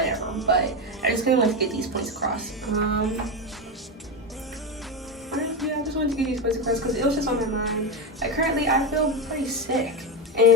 but I just kind of want to get these points across. Yeah, I just wanted to get these points across because it was just on my mind. Like currently, I feel pretty sick,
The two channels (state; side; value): normal; both; correlation 0.15